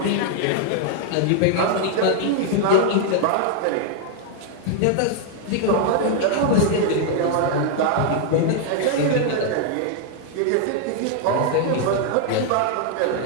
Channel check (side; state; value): both; different; correlation 0.00